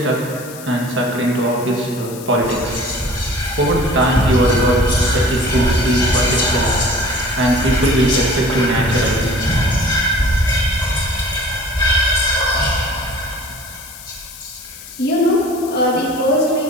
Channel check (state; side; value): noise; left; hiss, 16 dB below the sound